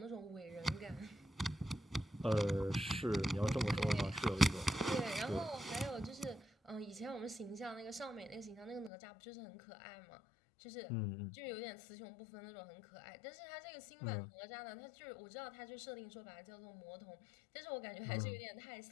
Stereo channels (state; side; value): drops out; right; at 8.9 s